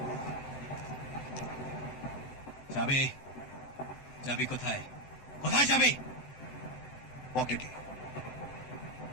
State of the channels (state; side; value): late; right; 7.8 ms